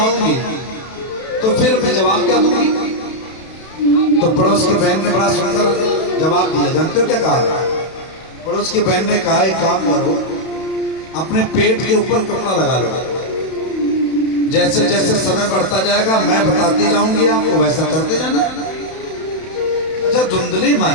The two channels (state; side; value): late; right; 32 ms